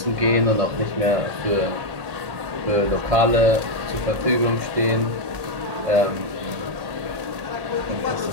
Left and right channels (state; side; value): late; left; 1.8 ms